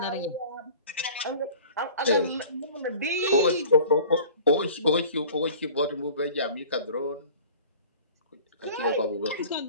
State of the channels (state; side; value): inverted; both; correlation -0.45